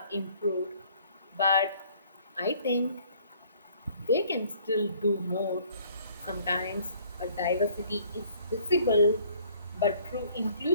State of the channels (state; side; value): inverted; both; correlation -0.58